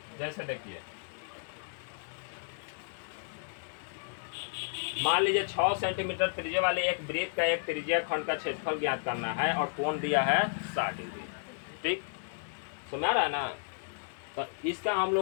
जैसे देखिए, मान लीजिए 6 सेंटीमीटर त्रिज्या वाले एक वृत्त का एक त्रिज्या खंड का क्षेत्रफल ज्ञात करना है और कोण दिया है 60 डिग्री। ठीक, समझ रहा है ना? तो इसका हम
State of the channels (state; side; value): silent; right; digital silence